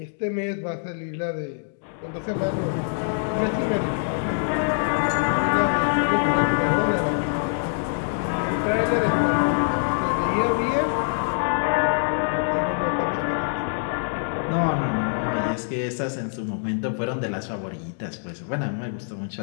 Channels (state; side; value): silent; right; digital silence